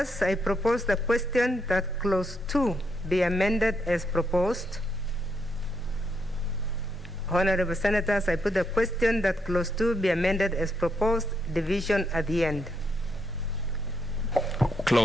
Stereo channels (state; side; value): normal; both; correlation 0.78